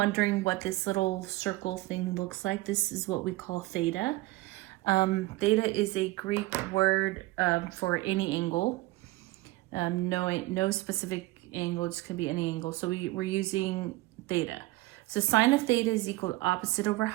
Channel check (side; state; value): left; quieter; 19.4 dB